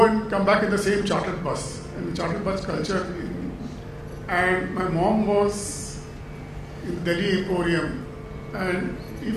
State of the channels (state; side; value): identical; both; correlation 1.00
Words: and come back in the same chartered bus, and the chartered bus culture. And my mom was in Delhi Emporium, and